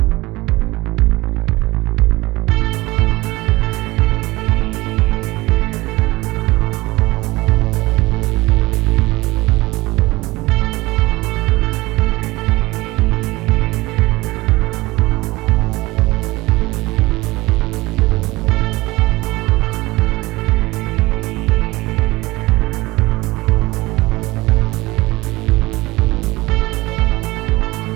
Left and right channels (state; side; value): quieter; left; 20.7 dB